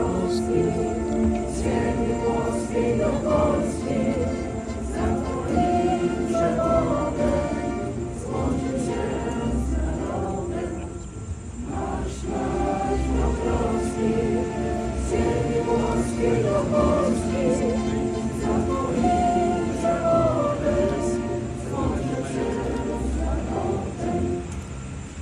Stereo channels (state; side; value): identical; both; correlation 1.00